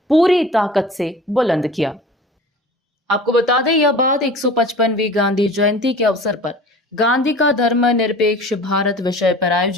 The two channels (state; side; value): normal; both; correlation 0.41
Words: पूरी ताकत से बुलंद किया। आपको बता दें, यह बात 155वीं गांधी जयंती के अवसर पर गांधी का धर्मनिरपेक्ष भारत विषय पर